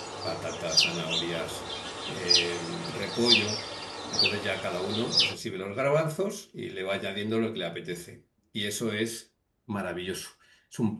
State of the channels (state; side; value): identical; both; correlation 1.00